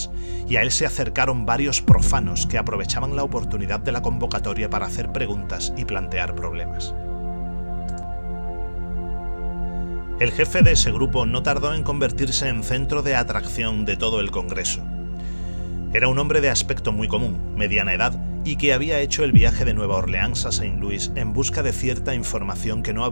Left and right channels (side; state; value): both; inverted; correlation -1.00